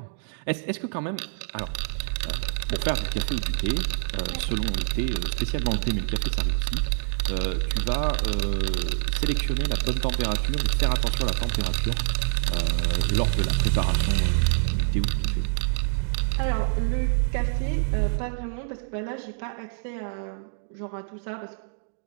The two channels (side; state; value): left; silent; digital silence